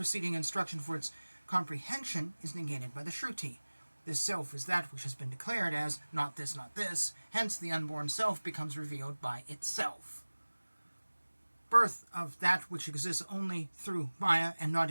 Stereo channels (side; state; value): both; inverted; correlation -1.00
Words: instruction for its comprehension is negated by the Shruti. This self is that which has been declared as not this, hence the unborn self becomes revealed by itself. Birth of that which exists only through Maya and not